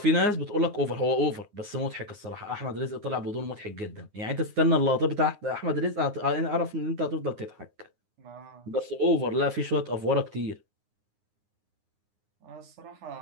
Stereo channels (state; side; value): late; left; 9.6 ms